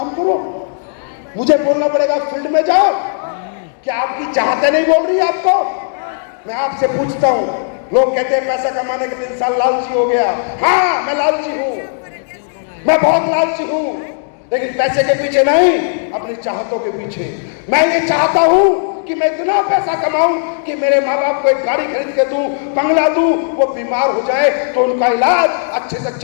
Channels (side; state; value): right; silent; digital silence